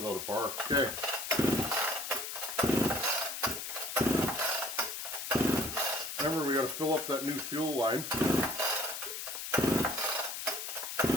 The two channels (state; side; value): noise; left; hiss, 6 dB below the sound